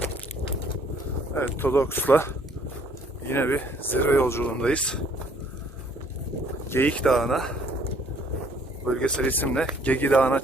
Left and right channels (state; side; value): normal; both; correlation 0.61